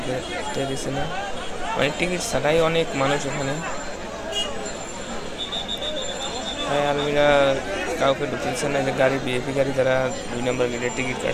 দিচ্ছে না। মানে টিকিট ছাড়াই অনেক মানুষ এখানে, তাই আর্মিরা কাউকে ঢুকতে দিচ্ছে না। যে গাড়ি বিএপি গাড়ি যারা 2 নম্বর গেটের টিকিট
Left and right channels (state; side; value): identical; both; correlation 1.00